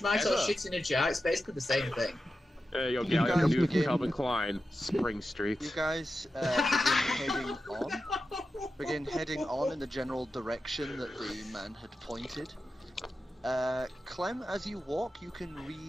Vegemite, or shit in a jar, it's basically the same thing. Hey, yo, You Gallium, guys new from begin- Calvin Klein. Spring Street. You guys begin heading on in the general direction that the man had pointed. Clem, as you walk, you can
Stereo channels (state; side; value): normal; both; correlation 0.91